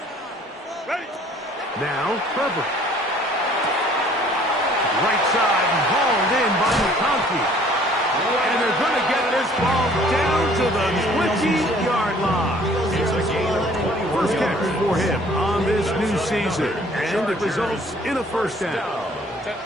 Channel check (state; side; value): normal; both; correlation 0.56